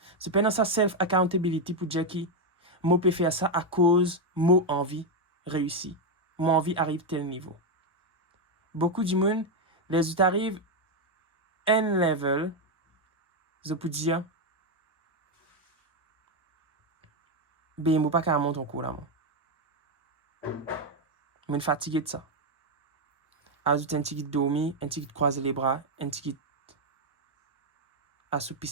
Je peine dans sa self-accountability pour dire que moi peux faire ça à cause moi envie réussi. Mon envie arrive tel niveau. Beaucoup de monde, les autres arrivent un level, je peux dire, ben moi pas qu'à monter en cours là. Je suis fatigué de ça. Ajoute un petit dormir, un petit croiser les bras, un petit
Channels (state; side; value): normal; both; correlation 0.04